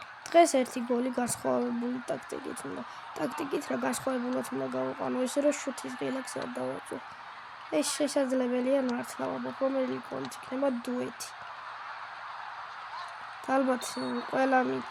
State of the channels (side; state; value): both; identical; correlation 1.00